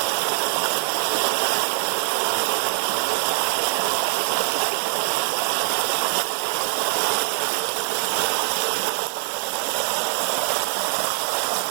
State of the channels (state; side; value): silent; left; 63 dB below the other